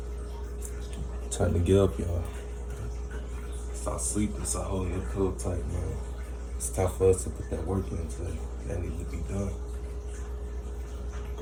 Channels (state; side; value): identical; both; correlation 1.00